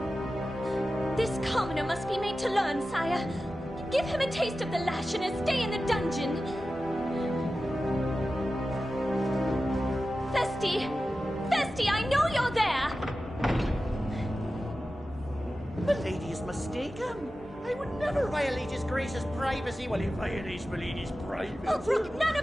This commoner must be made to learn, sire. Give him a taste of the lash and a stay in the dungeon. Festy! Festy, I know you're there! Milady is mistaken. I would never violate His Grace's privacy while he violates Milady's privacy. Oh, brook none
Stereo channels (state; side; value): normal; both; correlation 0.94